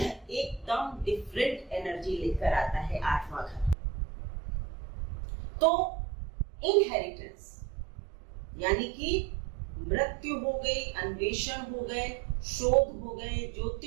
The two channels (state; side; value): drops out; left; at 3.8 s